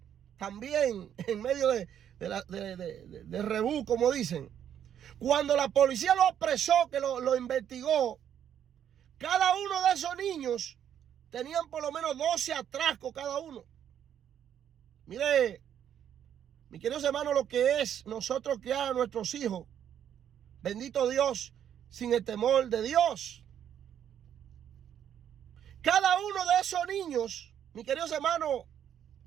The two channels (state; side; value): quieter; left; 9.6 dB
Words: también en medio de rebú, como dicen. Cuando la policía lo apresó, que lo investigó, cada uno de esos niños tenían por lo menos 12 atracos cada uno. Mire, mis queridos hermanos, lo que es nosotros criar a nuestros hijos, bendito Dios, sin el temor de Dios. Cada uno de esos niños, mis queridos hermanos,